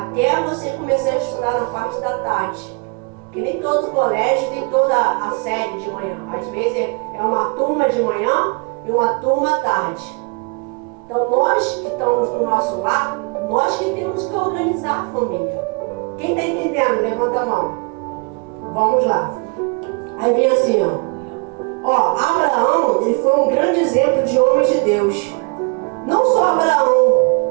você começar a estudar na parte da tarde. Que nem todo colégio tem toda a série de manhã. Às vezes é uma turma de manhã e uma turma à tarde. Então nós que estamos no nosso lar, nós que temos que organizar a família. Quem está entendendo? Levanta a mão. Vamos lá. Aí vem assim, ó. Abraão, ele foi um grande exemplo de homem de Deus. Não só Abraão,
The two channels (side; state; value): left; quieter; 32.0 dB